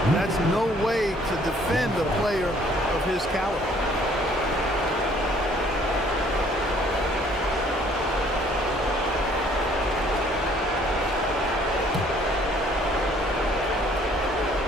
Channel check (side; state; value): both; normal; correlation 0.60